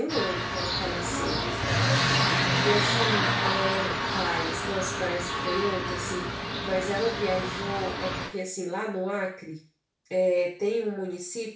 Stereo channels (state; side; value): identical; both; correlation 1.00